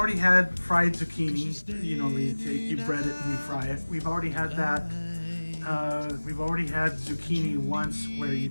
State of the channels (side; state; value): both; inverted; correlation -1.00